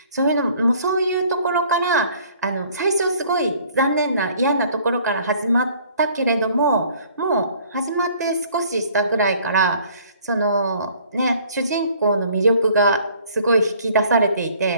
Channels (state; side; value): inverted; both; correlation -0.56